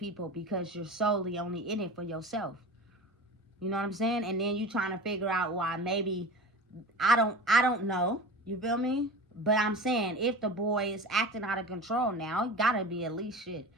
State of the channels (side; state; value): both; normal; correlation 0.33